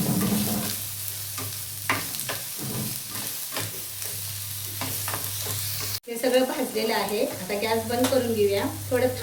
हे सगळं भाजलेलं आहे. आता गॅस बंद करून घेऊया. थोडं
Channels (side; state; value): both; identical; correlation 1.00